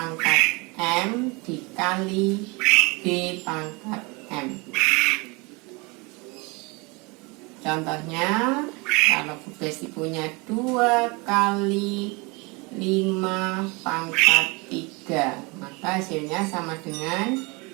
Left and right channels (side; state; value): left; quieter; 27.4 dB